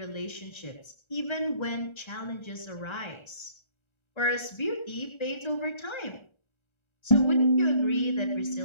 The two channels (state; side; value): late; right; 1.3 ms